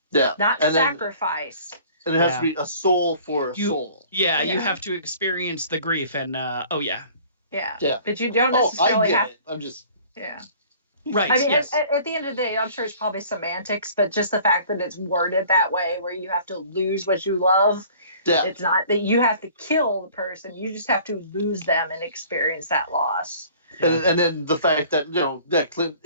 Yeah. not And then- sacrifice. And it has Yeah. to be a soul for a You- soul. Yeah, you Yeah. have to experience the grief and oh yeah. Yeah. Yeah. But you don't Oh, I necessarily get have. it. I'm just. Yeah. Right. I mean, yes. at the end of the day, I'm sure it's probably semantics, but just the fact that it's worded that way, where you have to lose what you love, Yeah. it's not that you have to kill the person. You just have to lose them and experience that loss. And then the fact that, that Clint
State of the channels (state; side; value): inverted; both; correlation -0.50